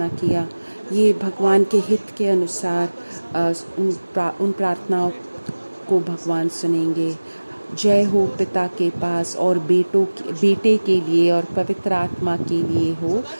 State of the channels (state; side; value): inverted; both; correlation -1.00